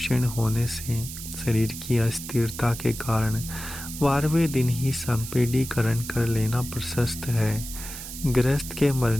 होने से, शरीर की अस्थिरता के कारण 12वें दिन ही संपीडीकरण कर लेना प्रशस्त है। गृहस्थ के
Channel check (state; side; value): noise; right; hiss, 10 dB below the sound